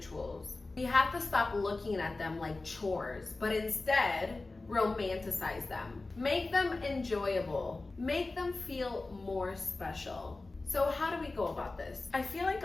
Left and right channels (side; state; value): right; quieter; 3.3 dB